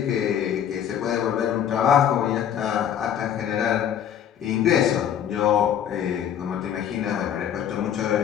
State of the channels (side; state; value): right; quieter; 9.5 dB